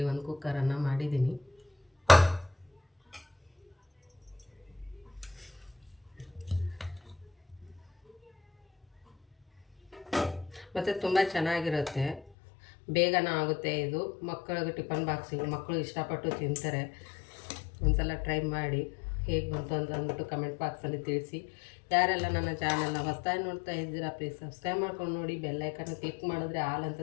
ಒಂದು ಕುಕ್ಕರನ್ನು ಮಾಡಿದ್ದೀನಿ. ಮತ್ತು ತುಂಬ ಚೆನ್ನಾಗಿರುತ್ತೆ, ಬೇಗನ ಆಗುತ್ತೆ ಇದು. ಮಕ್ಕಳಿಗೆ ಟಿಫನ್ ಬಾಕ್ಸಿಗೆ ಮಕ್ಕಳು ಇಷ್ಟಪಟ್ಟು ತಿಂತಾರೆ. ಒಂದ್ಸಲ ಟ್ರೈ ಮಾಡಿ ಹೇಗೆ ಬಂತು ಅಂತ ಅಂದ್ಬಿಟ್ಟು ಕಮೆಂಟ್ ಬಾಕ್ಸಲ್ಲಿ ತಿಳಿಸಿ. ಯಾರೆಲ್ಲ ನನ್ನ ಚಾನಲ್ನ ಹೊಸದಾಗಿ ನೋಡ್ತಾ ಇದ್ದೀರಾ ಪ್ಲೀಸ್ ಸಬ್ಸ್ಕ್ರೈಬ್ ಮಾಡ್ಕೊಂಡು ನೋಡಿ. ಬೆಲ್ಲೈಕನ್ನ ಕ್ಲಿಕ್ ಮಾಡಿದ್ರೆ ಆಲ್ ಅಂತ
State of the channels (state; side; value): drops out; right; at 12.3 s